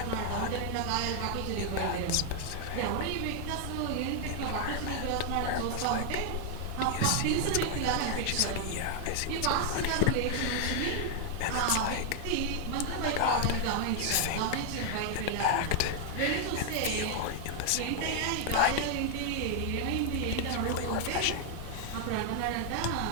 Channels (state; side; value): different; both; correlation 0.00